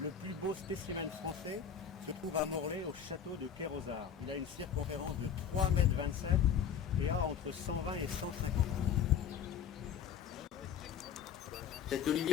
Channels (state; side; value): quieter; right; 7.9 dB